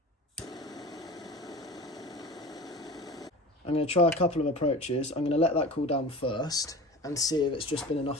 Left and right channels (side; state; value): both; normal; correlation 0.35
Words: I'm going to try a couple of approaches. I'm going to let that cool down first and see if it's just been